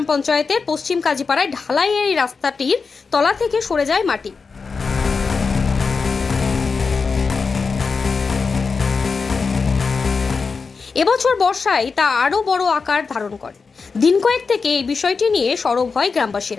পঞ্চায়েতের পশ্চিম কাজীপাড়ায় ঢালাই এই রাস্তাটির তলা থেকে সরে যায় মাটি। এবছর বর্ষায় তা আরও বড় আকার ধারণ করে। দিন কয়েক থেকে এই বিষয়টি নিয়ে সরব হয়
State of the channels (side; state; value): right; quieter; 4.9 dB